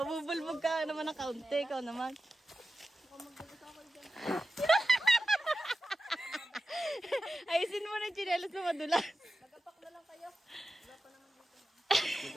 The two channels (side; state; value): both; normal; correlation 0.92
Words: ka naman ng kaunti. Ikaw naman. Ayusin mo na yung chinelas na madulas. Nagapak na lang kayo.